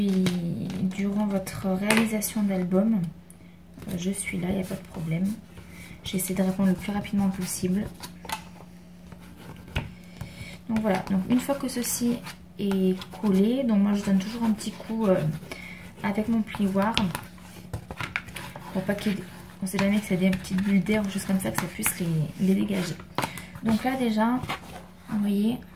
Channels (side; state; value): both; identical; correlation 1.00